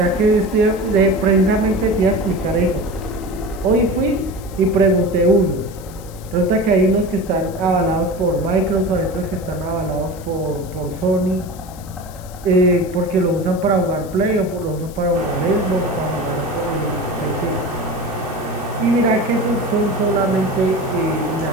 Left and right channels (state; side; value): noise; left; hiss, 21 dB below the sound